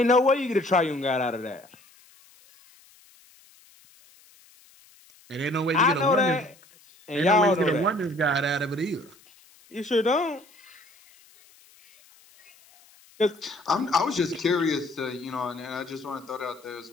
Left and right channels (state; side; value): noise; left; hiss, 28 dB below the sound